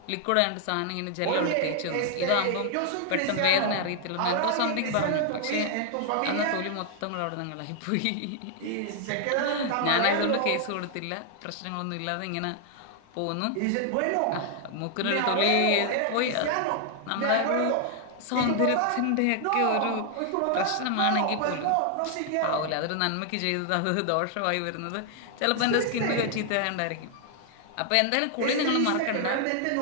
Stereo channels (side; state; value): both; different; correlation 0.00